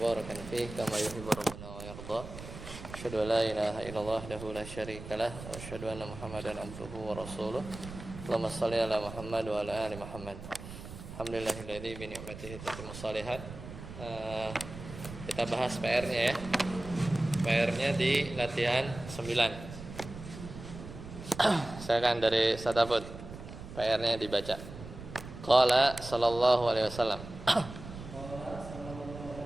fihi kama yuhibbu rabbuna wa yarda. Asyhadu an la ilaha illallah wahdahu la syarikalah wa asyhadu anna Muhammadan abduhu wa rasuluh. Allahumma shalli ala Muhammad wa ala ali Muhammad. Alhamdulillahilladzi bi ni'matihi tatimmu shalihat. Kita bahas PR-nya ya. PR-nya di latihan 9. Silakan dari Satafut. PR-nya dibaca. Qala sallallahu alaihi wasallam.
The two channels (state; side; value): noise; right; rumble, 12 dB below the sound